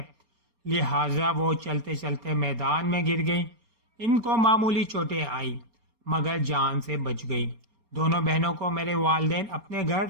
لہٰذا وہ چلتے چلتے میدان میں گر گئیں۔ ان کو معمولی چوٹیں آئی مگر جان سے بچ گئی۔ دونوں بہنوں کو میرے والدین اپنے گھر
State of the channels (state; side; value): late; left; 4.3 ms